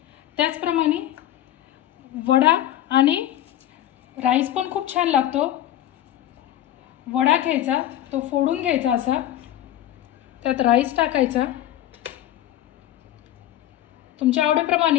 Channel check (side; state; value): right; quieter; 12.7 dB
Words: त्याचप्रमाणे वडा आणि राईस पण खूप छान लागतो. वडा घ्यायचा, तो फोडून घ्यायचा असा, त्यात राईस टाकायचा. तुमच्या